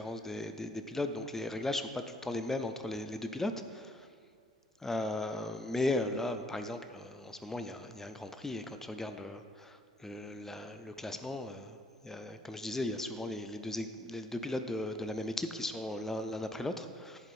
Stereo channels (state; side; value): normal; both; correlation 0.68